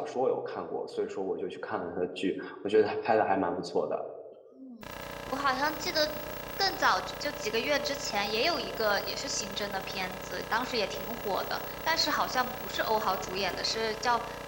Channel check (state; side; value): identical; both; correlation 1.00